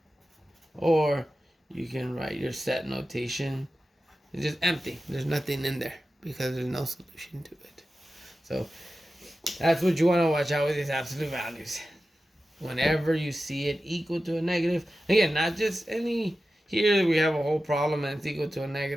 Or you can write your set notation. It's just empty. There's nothing in there because there's no solution to it. So that's what you want to watch out with these absolute values. Whenever you see it equal to a negative, again, not just any, here we have a whole problem and it's equal to a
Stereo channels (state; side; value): normal; both; correlation 0.93